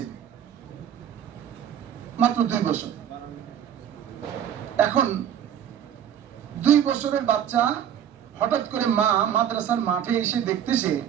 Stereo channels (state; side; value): quieter; left; 9.6 dB